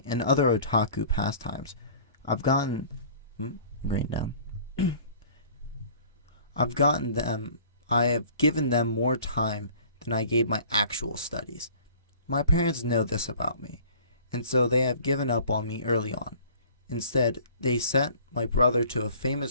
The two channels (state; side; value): inverted; both; correlation -0.49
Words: and other otaku pastimes, I've gotten green down. I've gotten them I have given them more time than I gave my actual studies. My parents know this about me, and so they have given up on me early on. Instead, they sent my brother to a